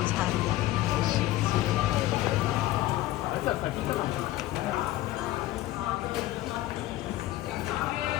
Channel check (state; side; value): quieter; right; 15.9 dB